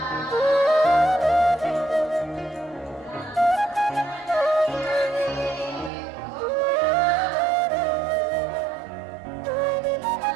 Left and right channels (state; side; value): drops out; left; at 5.9 s